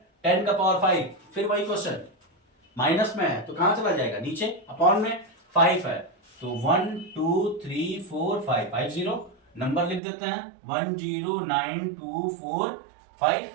10 का पावर 5, फिर वही क्वेश्चन, माइनस में है तो कहां चला जाएगा नीचे, अपॉन में 5 है तो 1 2 3 4 5 50, नंबर लिख देते हैं 109245,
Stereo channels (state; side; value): drops out; left; at 10.0 s